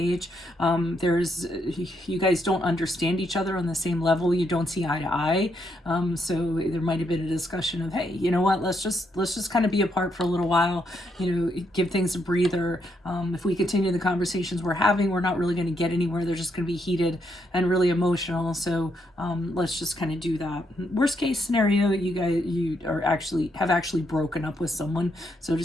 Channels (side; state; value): both; normal; correlation 0.77